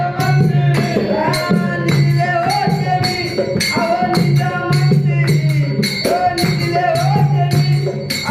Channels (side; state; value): both; identical; correlation 1.00